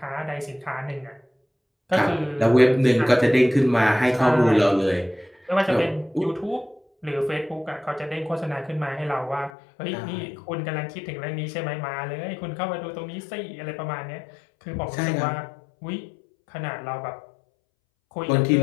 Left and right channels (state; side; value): drops out; right; at 9.5 s